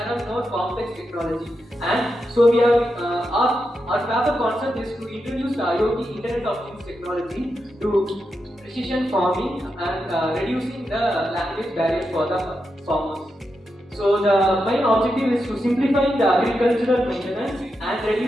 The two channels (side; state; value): both; normal; correlation 0.86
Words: are more complex technology, and so we are our paper concept is to introduce the IoT Internet of Things technology to precision farming and reducing the language barrier for the farmers. So the main objective is to simplify the agricultural maintenance and